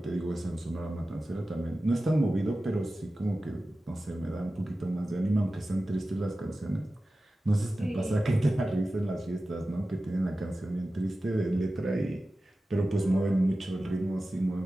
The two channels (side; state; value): both; normal; correlation 0.95